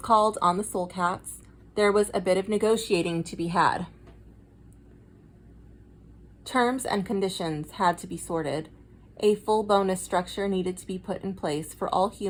called on the Soul Cats, there was a bit of negotiating to be had. Terms and conditions had to be sorted. A full bonus structure needed to be put in place for all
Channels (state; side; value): identical; both; correlation 1.00